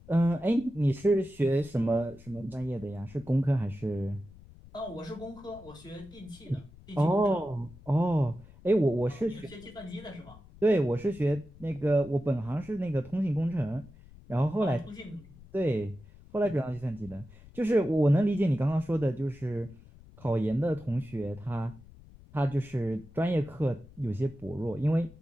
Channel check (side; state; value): left; noise; rumble, 21 dB below the sound